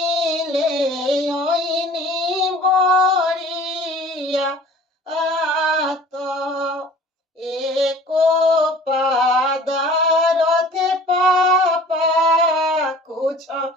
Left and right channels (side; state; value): both; normal; correlation 0.47